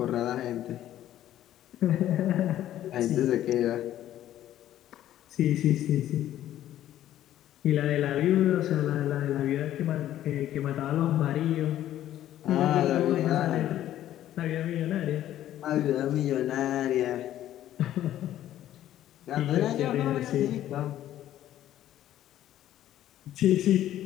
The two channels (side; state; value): right; quieter; 12.5 dB